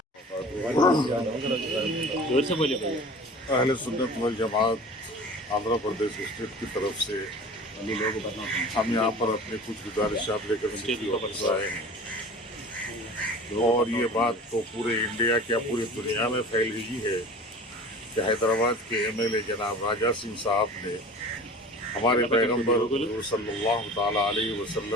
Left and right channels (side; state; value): both; normal; correlation 0.40